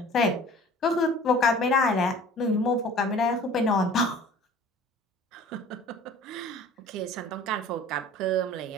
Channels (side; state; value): both; normal; correlation 0.46